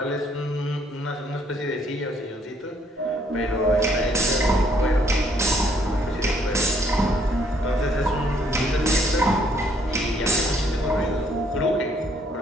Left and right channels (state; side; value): normal; both; correlation 0.67